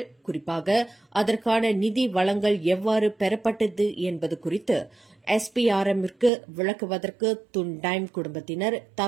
குறிப்பாக அதற்கான நிதி வளங்கள் எவ்வாறு பெறப்பட்டது என்பது குறித்து SPRMற்கு விளக்குவதற்கு துன்டைம் குடும்பத்தினர்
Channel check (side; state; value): left; drops out; at 6.3 s